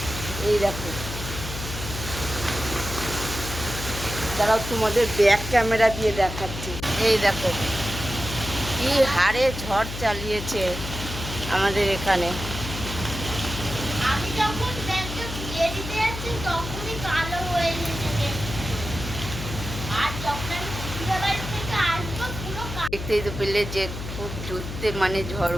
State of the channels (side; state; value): left; noise; hum, 8 dB below the sound